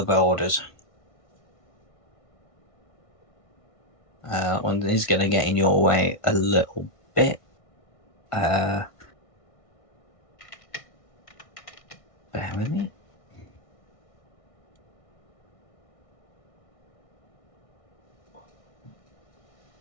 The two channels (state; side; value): late; right; 1.5 ms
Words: boarders. One is going to get in your way a little bit. Bear with me.